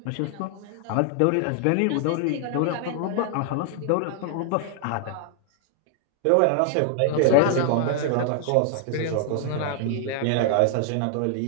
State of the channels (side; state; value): both; different; correlation 0.00